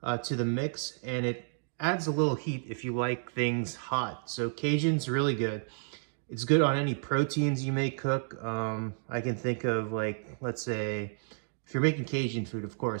to the mix, and it adds a little heat if you like things hot. So Cajun's really good. It's good on any proteins you may cook. I can think of like, let's say, if you're making Cajun food, of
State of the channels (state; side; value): silent; left; digital silence